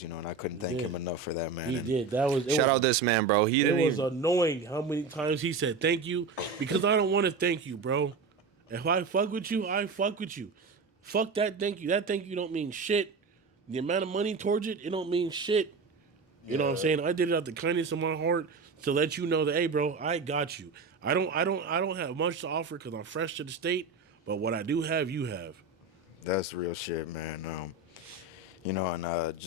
you know, and I couldn't thank him enough for that, man. He And did. That was Shout out this man, bro. He It didn't was even. annoying how many times he said thank you, because I don't want to thank you, bro. If I fuck with you, I fuck with you. Fuck that thank you. That thank you don't mean shit. The amount of money towards it, it don't mean shit. You know what I'm saying? I did it out the kindness of my heart to let you know that, hey, bro, I got you. I don't have much to offer because I'm fresh to the state, but what I do have, you have. that's real shit, man. You know, and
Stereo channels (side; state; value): left; quieter; 4.4 dB